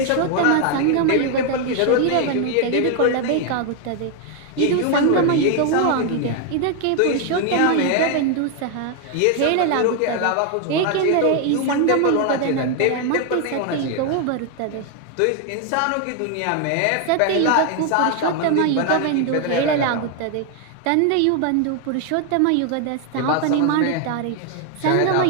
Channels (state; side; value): different; both; correlation 0.01